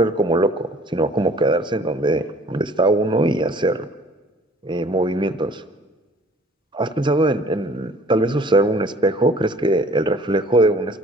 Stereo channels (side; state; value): both; normal; correlation 0.52